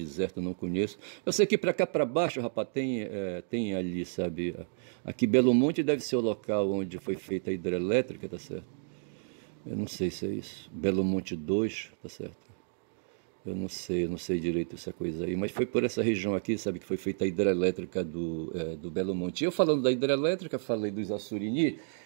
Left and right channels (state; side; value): silent; left; digital silence